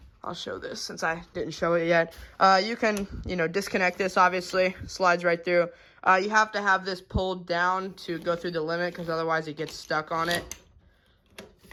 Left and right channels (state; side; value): identical; both; correlation 1.00